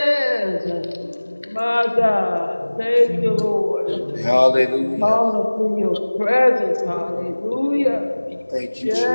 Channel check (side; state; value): both; inverted; correlation -1.00